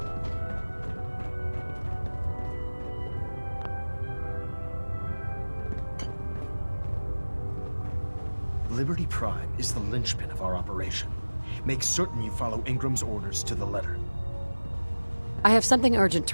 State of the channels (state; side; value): inverted; both; correlation -1.00